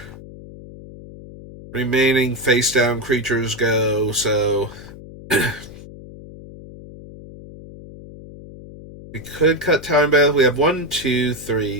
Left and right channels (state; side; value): noise; left; hum, 17 dB below the sound